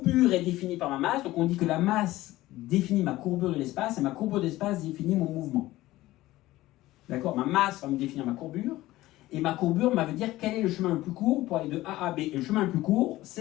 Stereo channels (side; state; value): right; quieter; 16.9 dB